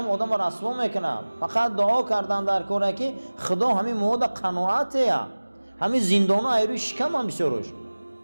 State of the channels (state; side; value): inverted; both; correlation -1.00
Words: آدم رسوا میکنه. فقط دعا کردن در کاره که خدا همین مود قناعته، همین زندان ها ایروی شکم هم بسیارش،